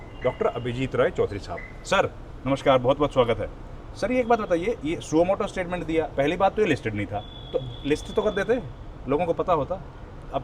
डॉक्टर अभिजीत रॉय चौधरी साहब। सर नमस्कार, बहुत बहुत स्वागत है। सर ये एक बात बताइए, ये सुओ मोटो स्टेटमेंट दिया, पहली बात तो ये लिस्टेड नहीं था, तो लिस्ट तो कर देते, लोगों को पता होता,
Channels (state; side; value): identical; both; correlation 1.00